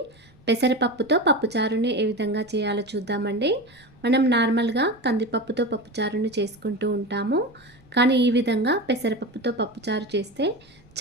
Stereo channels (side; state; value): right; noise; rumble, 29 dB below the sound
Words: పెసరపప్పుతో పప్పుచారుని ఏ విధంగా చేయాలో చూద్దామండి. మనం నార్మల్గా కందిపప్పుతో పప్పుచారుని చేసుకుంటూ ఉంటాము, కానీ ఈ విధంగా పెసరపప్పుతో పప్పుచారు చేస్తే